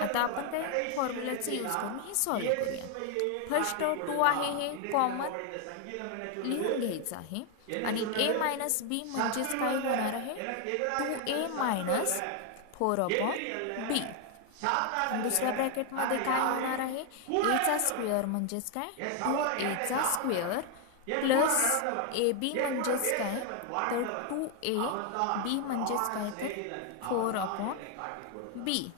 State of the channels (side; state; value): both; different; correlation 0.01